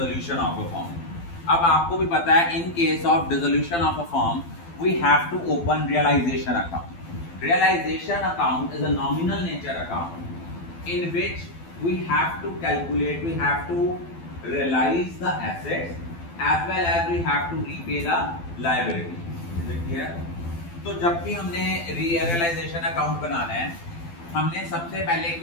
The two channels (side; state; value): right; late; 12 ms